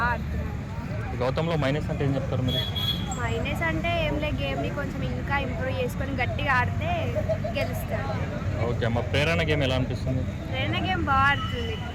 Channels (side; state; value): both; identical; correlation 1.00